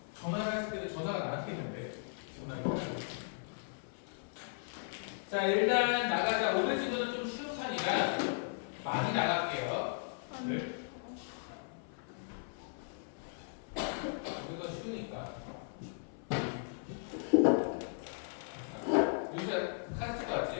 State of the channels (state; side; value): silent; right; 53 dB below the other